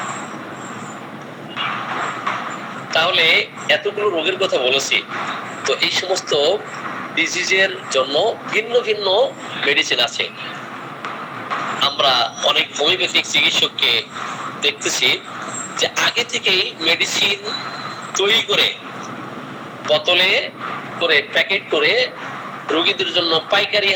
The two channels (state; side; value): identical; both; correlation 1.00